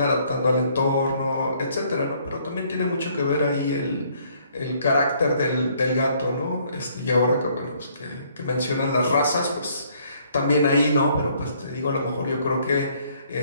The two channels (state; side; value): inverted; both; correlation -0.65